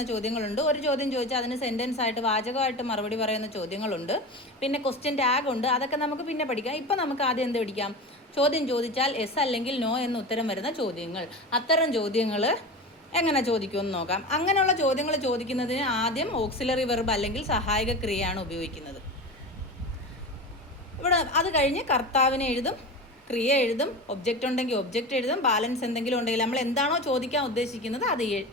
ചോദ്യങ്ങളുണ്ട്. ഒരു ചോദ്യം ചോദിച്ചാൽ അതിന് സെൻറ്റൻസ് ആയിട്ട് വാചകമായിട്ട് മറുപടി പറയുന്ന ചോദ്യങ്ങളുണ്ട്. പിന്നെ ക്വസ്റ്റ്യൻ ടാഗ് ഉണ്ട്. അതൊക്കെ നമുക്ക് പിന്നെ പഠിക്കാം. ഇപ്പം നമുക്ക് ആദ്യം എന്ത് പഠിക്കാം? ചോദ്യം ചോദിച്ചാൽ യെസ് അല്ലെങ്കിൽ നോ എന്ന് ഉത്തരം വരുന്ന ചോദ്യങ്ങൾ. അത്തരം ചോദ്യങ്ങൾ എങ്ങനെ ചോദിക്കുമെന്ന് നോക്കാം. അങ്ങനെയുള്ള ചോദ്യങ്ങൾ ചോദിക്കുന്നതിന് ആദ്യം ഓക്സിലറി വെർബ് അല്ലെങ്കിൽ സഹായക ക്രിയയാണ് ഉപയോഗിക്കുന്നത്. ഇവിടെ അത് കഴിഞ്ഞ് കർത്താവിനെ എഴുതും, ക്രിയ എഴുതും, ഒബ്ജക്റ്റ് ഉണ്ടെങ്കിൽ ഒബ്ജക്റ്റ് എഴുതും, ബാലൻസ് എന്തെങ്കിലും ഉണ്ടെങ്കിൽ നമ്മൾ എന്താണോ ചോദിക്കാൻ ഉദ്ദേശിക്കുന്നത് അത്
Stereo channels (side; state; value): both; normal; correlation 0.28